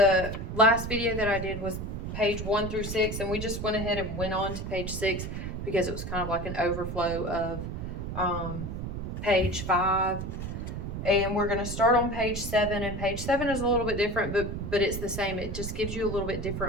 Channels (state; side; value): noise; right; rumble, 5 dB below the sound